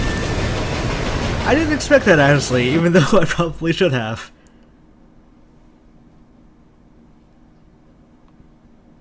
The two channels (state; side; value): identical; both; correlation 1.00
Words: I didn't expect that, honestly, even though I probably should have.